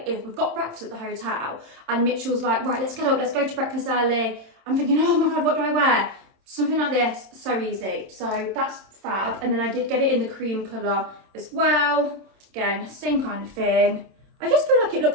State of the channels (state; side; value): late; left; 27 ms